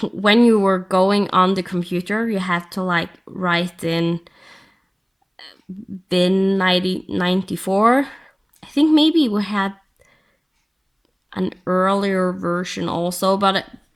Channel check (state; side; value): identical; both; correlation 1.00